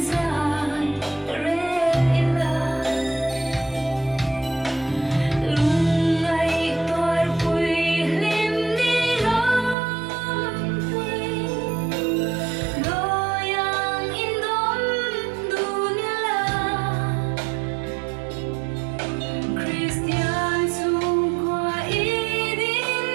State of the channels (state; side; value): drops out; left; at 9.8 s